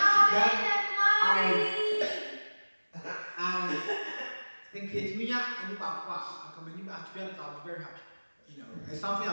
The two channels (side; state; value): both; inverted; correlation -1.00